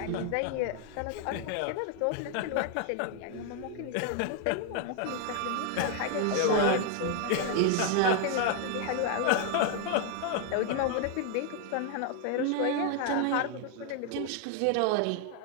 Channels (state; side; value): different; both; correlation 0.00